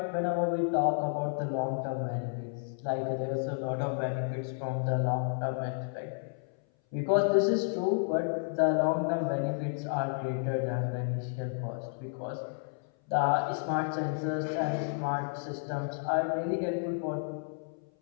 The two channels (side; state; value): right; silent; 57 dB below the other